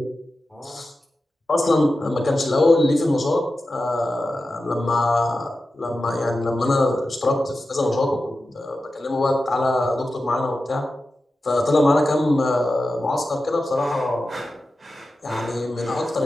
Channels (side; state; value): both; normal; correlation 0.92